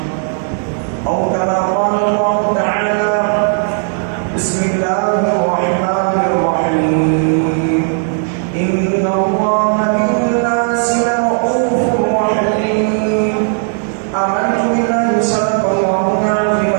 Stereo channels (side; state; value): left; silent; 61 dB below the other